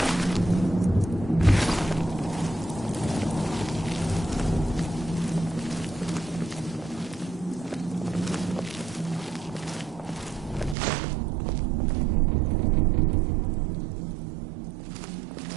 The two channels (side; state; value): left; drops out; at 10.8 s